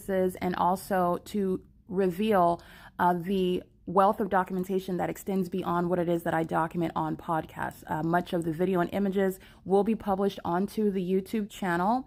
and also to reveal the wealth of documentation that extends beyond what it is that I document on podcasts. Much of the video and images will be published onto the YouTube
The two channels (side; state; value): both; identical; correlation 1.00